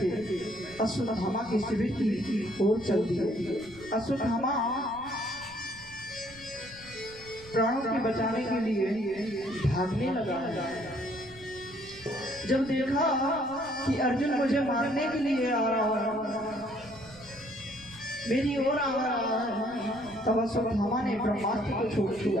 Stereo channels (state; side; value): noise; right; rumble, 21 dB below the sound